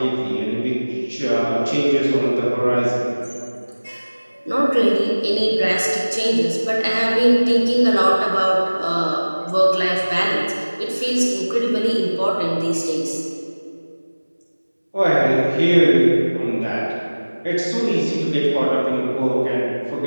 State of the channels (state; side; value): inverted; both; correlation -1.00